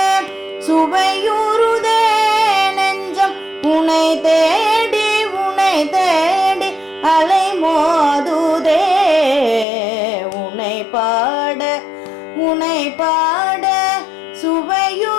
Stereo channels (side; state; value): right; drops out; at 9.7 s